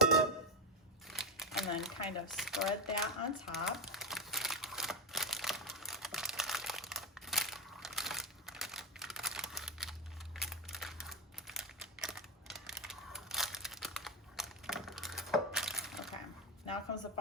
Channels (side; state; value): both; normal; correlation 0.11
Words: And then kind of spread that on top. Now comes the